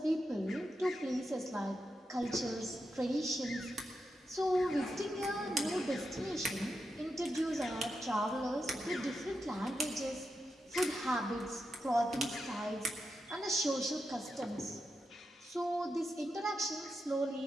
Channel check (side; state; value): both; normal; correlation 0.87